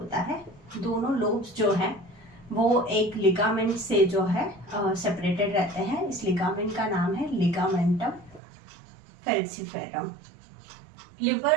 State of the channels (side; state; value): left; drops out; at 8.4 s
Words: है। दोनों लोब्स जो हैं वो एक लिगामेंट से जो है सेपरेटेड रहते हैं। इस लिगामेंट का नाम है लिगामेंटम फैल्सिफेरम।